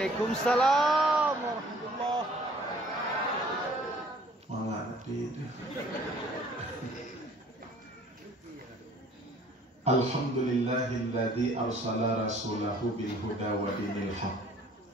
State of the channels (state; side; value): normal; both; correlation 0.55